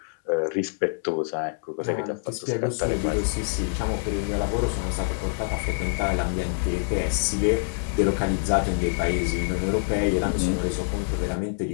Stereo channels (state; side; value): silent; right; digital silence